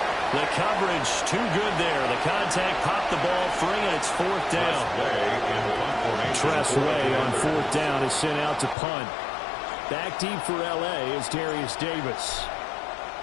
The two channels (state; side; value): drops out; right; at 8.8 s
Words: The coverage too good there. The contact popped the ball free, and it's 4th down. Tress Way on 4th down is sent out to punt. Back deep for L.A. is Darius Davis.